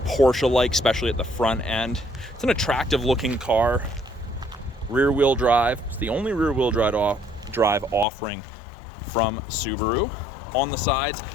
especially at the front end. It's an attractive looking car, rear wheel drive. It's the only rear wheel drive offering from Subaru. On the sides,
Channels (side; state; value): right; drops out; at 8.1 s